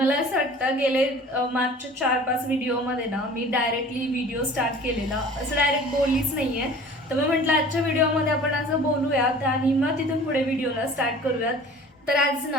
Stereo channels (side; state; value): both; normal; correlation 0.45